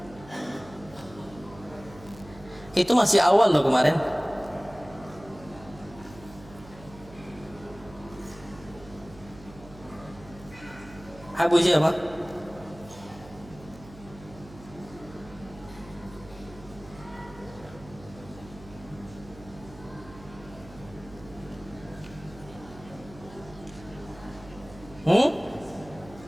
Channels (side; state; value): right; noise; hum, 18 dB below the sound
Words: Itu masih awal loh kemarin. Abu siapa?